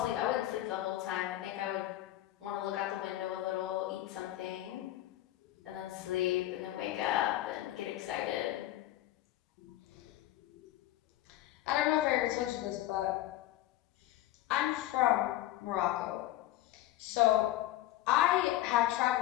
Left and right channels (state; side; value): quieter; right; 14.8 dB